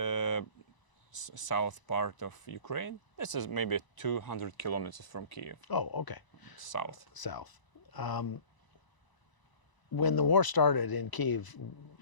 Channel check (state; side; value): late; right; 1.0 ms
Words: south part of Ukraine. This is maybe 200 kilometers from Kiev, Oh, okay. south. South. When the war started in Kiev,